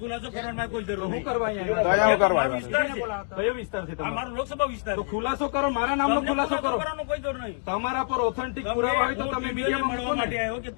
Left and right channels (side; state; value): right; silent; digital silence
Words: ખુલાસો કરવાનો કોઈ જરૂર શું કરવા અહીંયા મારો વિસ્તાર છે. કયો વિસ્તાર છે? મારો લોકસભા વિસ્તાર. તો ખુલાસો કરો, મારા નામનો ખુલાસો કરો. કોઈ જરૂર નહીં. તમારા પર ઓથેન્ટિક પુરાવા હોય તો તમે મીડિયામાં મળવા માટે આવ્યો કે